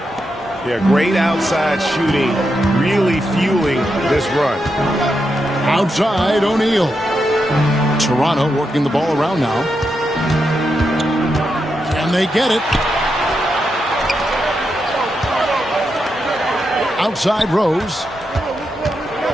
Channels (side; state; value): both; normal; correlation 0.85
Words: Yeah, great outside shooting, really fueling this run. Outside, O'Neal. Toronto working the ball around now. Can they get it? Outside, Rose.